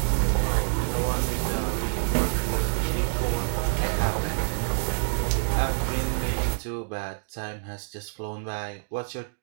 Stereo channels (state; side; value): silent; left; digital silence